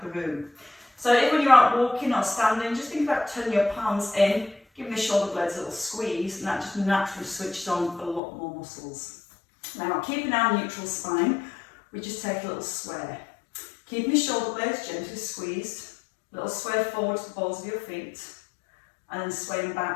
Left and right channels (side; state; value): right; drops out; at 8.2 s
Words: the room. So if when you're out walking or standing, just think about turning your palms in, giving the shoulder blades a little squeeze, and that just naturally switches on a lot more muscles. Now keeping our neutral spine, we just take a little sway. Keeping the shoulder blades gently squeezed, little sway forward to the balls of your feet, and then swaying